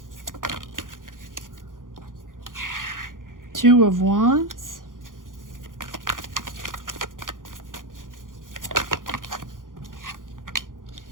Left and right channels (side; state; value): left; late; 0.90 ms